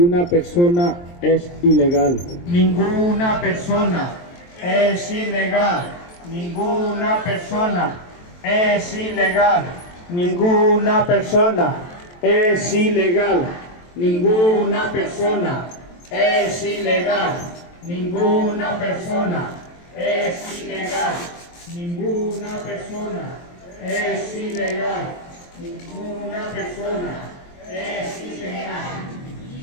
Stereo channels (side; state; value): right; late; 23 ms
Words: persona es ilegal. Ninguna persona es ilegal. Ninguna persona es ilegal. Ninguna persona es ilegal. Ninguna persona es ilegal. Ninguna persona es ilegal. Ninguna persona es ilegal. Ninguna persona es ilegal.